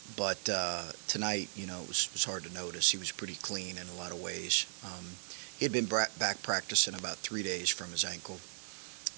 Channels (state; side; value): silent; left; 53 dB below the other